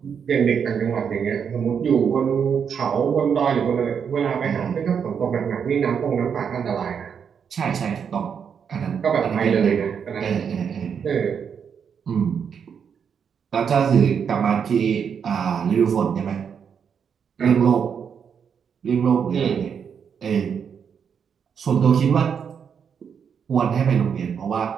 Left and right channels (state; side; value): quieter; left; 7.1 dB